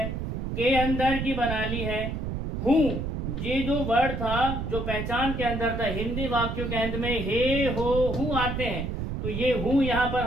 के अंदर की बना ली है। हूं, ये जो वर्ड था जो पहचान के अंदर था, हिंदी वाक्यों के अंत में हे, हो, हूं आते हैं। तो ये हूं यहाँ पर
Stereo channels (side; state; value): right; noise; rumble, 3 dB below the sound